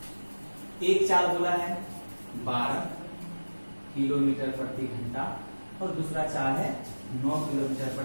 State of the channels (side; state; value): both; inverted; correlation -1.00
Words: एक चाल बोला है 12 किलोमीटर प्रति घंटा और दूसरा चाल है 9 किलोमीटर